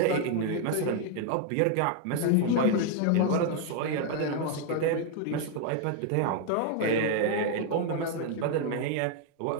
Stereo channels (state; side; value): different; both; correlation 0.00